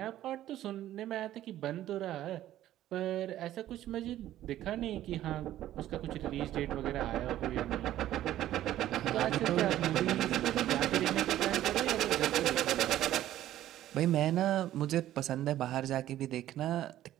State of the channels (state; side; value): quieter; left; 13.2 dB